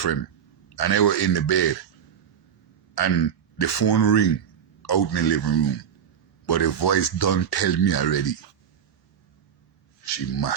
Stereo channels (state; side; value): quieter; left; 8.4 dB